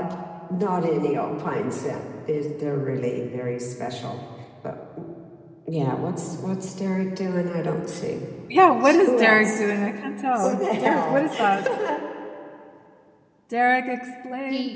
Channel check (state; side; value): identical; both; correlation 1.00